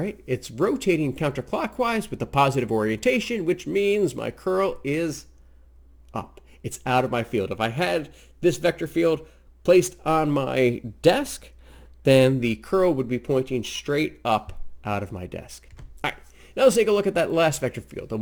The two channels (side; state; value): both; identical; correlation 1.00